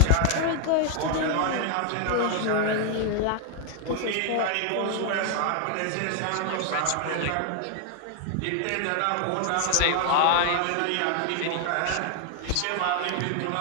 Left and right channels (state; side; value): different; both; correlation 0.00